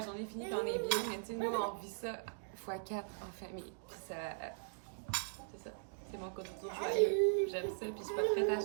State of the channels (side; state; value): left; silent; digital silence